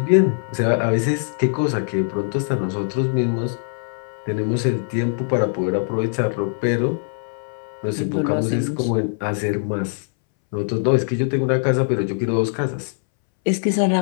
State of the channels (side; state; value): right; silent; 63 dB below the other